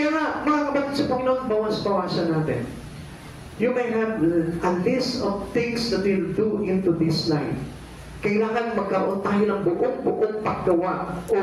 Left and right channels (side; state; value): both; identical; correlation 1.00